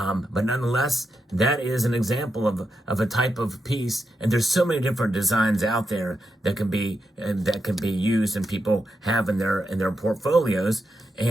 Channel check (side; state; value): both; normal; correlation 0.86